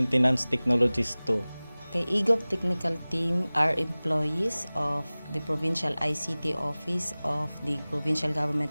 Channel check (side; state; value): both; inverted; correlation -0.99